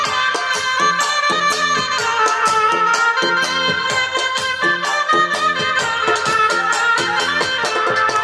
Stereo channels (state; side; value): identical; both; correlation 1.00